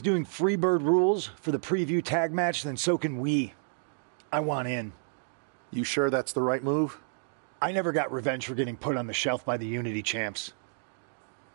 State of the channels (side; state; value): left; silent; digital silence